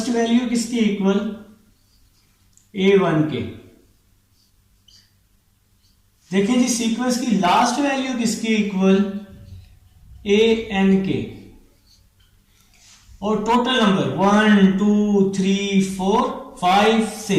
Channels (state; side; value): identical; both; correlation 1.00